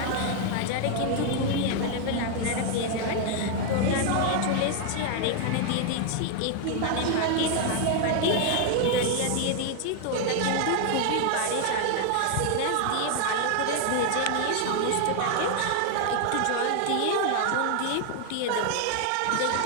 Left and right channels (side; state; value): both; different; correlation 0.00